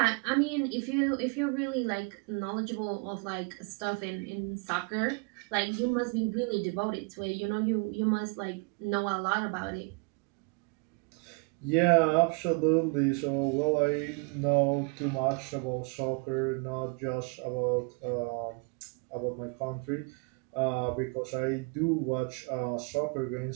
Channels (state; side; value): quieter; left; 33.2 dB